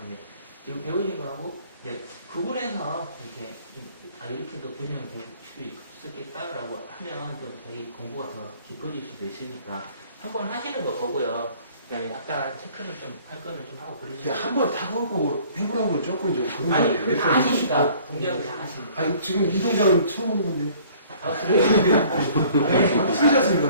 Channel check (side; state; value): both; inverted; correlation -0.54